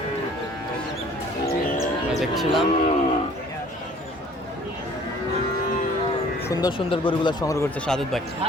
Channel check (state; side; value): normal; both; correlation 0.53